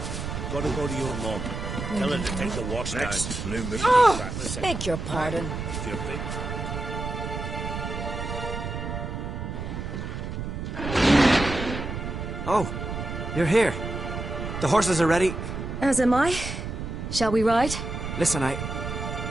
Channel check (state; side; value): noise; right; rumble, 5 dB below the sound